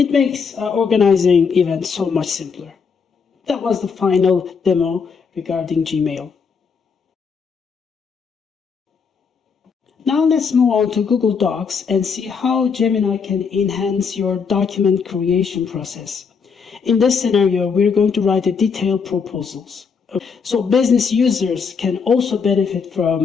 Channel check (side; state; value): right; quieter; 5.8 dB